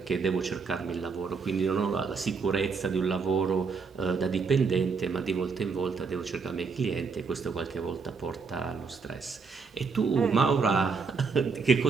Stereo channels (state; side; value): quieter; left; 5.0 dB